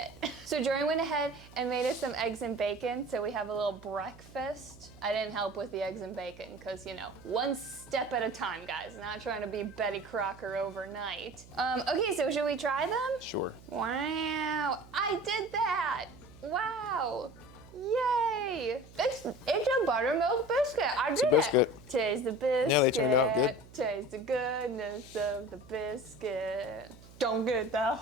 So Jordan went ahead and made us some eggs and bacon, so we have a little breakfast. I didn't help with the eggs and bacon, because you know, one step at a time, guys. Not trying to be Betty Crocker overnight. Okay, so should we try them? Sure. Wow, I did that. Wow, yay. It's a buttermilk biscuit, I did biscuit. it. Taste the biscuit. Yeah, they turned out good. Taste the goodness of the biscuit. Don't get that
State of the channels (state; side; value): noise; right; hum, 21 dB below the sound